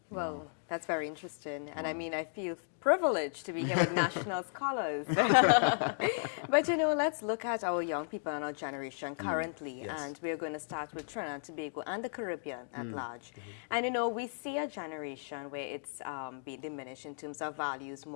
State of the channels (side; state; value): right; silent; digital silence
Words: Well, that's very interesting. And I mean, I feel privileged to be here with national scholars. But, you know, let's look at our young people and our generation currently. And we're going to start with Trinidad and Tobago and the Caribbean at large. And, you know, we see a generation where it's being diminished in terms of values,